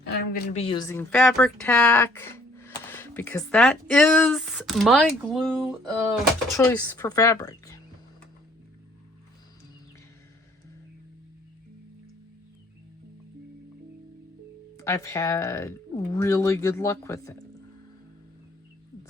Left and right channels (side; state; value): both; normal; correlation 0.60